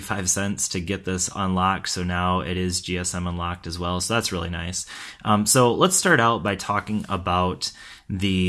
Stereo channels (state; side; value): identical; both; correlation 1.00